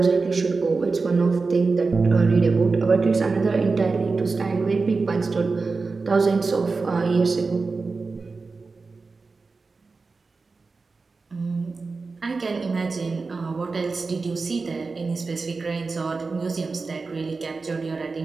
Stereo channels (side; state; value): left; quieter; 4.1 dB